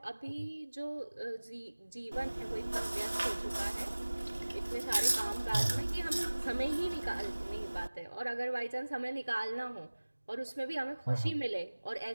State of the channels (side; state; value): both; inverted; correlation -1.00